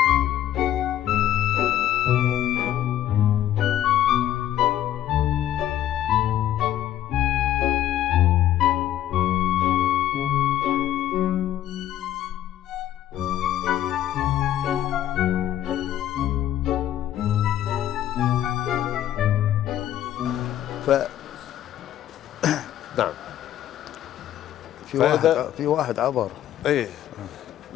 ف نعم. في واحد عبر. ايه،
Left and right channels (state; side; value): quieter; right; 12.0 dB